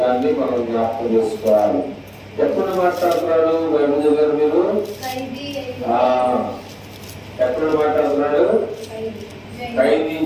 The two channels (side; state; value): both; identical; correlation 1.00